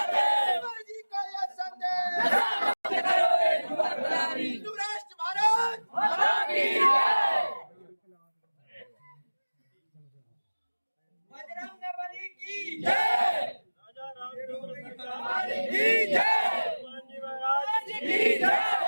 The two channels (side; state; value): both; inverted; correlation -1.00